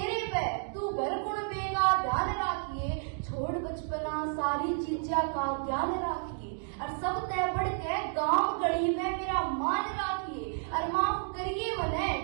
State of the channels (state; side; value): silent; left; 57 dB below the other